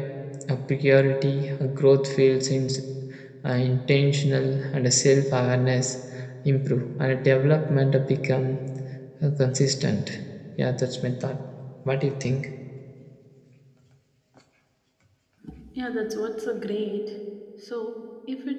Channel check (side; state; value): both; identical; correlation 1.00